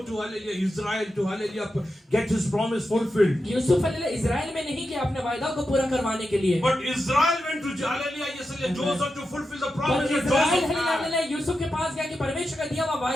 to hallelujah Israel to hallelujah get his promise fulfilled. यूसुफ हलेला इजराइल में नहीं गया अपने वायदा को पूरा करवाने के लिए, But Israel went to hallelujah yes, hallelujah Joseph to fulfill the promise बल्कि that Israel Joseph hallelujah had. Hallelujah यूसुफ के पास गया कि परमेश्वर का दिया हुआ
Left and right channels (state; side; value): normal; both; correlation 0.89